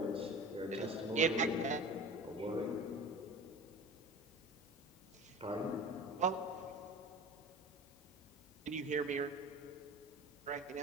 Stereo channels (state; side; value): noise; left; hum, 26 dB below the sound